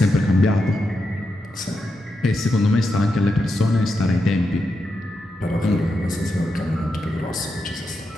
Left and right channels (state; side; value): normal; both; correlation 0.86